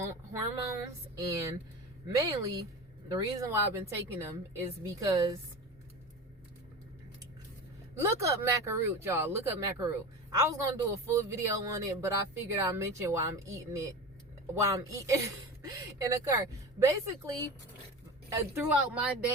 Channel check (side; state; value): both; normal; correlation 0.29